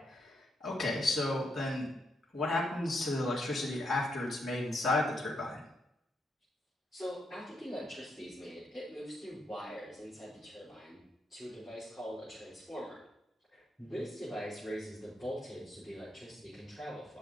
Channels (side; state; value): both; normal; correlation 0.79